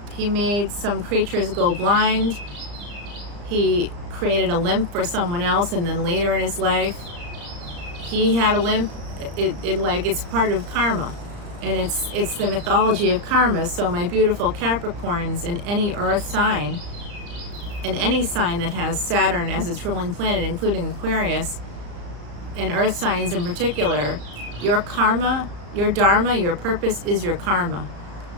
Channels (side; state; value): left; late; 35 ms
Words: some creatures go blind. He created a limp for someone else, and then later in his life, he had a limp. It's part of karma, and it's the mythology of karma. So my beautiful Capricorns, in any earth sign, and any sign that has Saturn as its ruling planet, including Aquarius, and earth signs in particular, your karma, your dharma, your purpose is your karma.